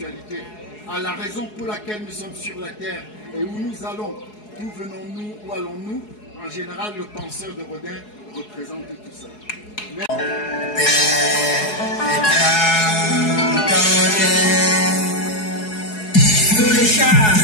à la raison pour laquelle nous sommes sur la terre et où nous allons, d'où venons-nous, où allons-nous. En général, le penseur de Rodin représente tout ça. Sur les chars,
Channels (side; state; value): right; late; 4.7 ms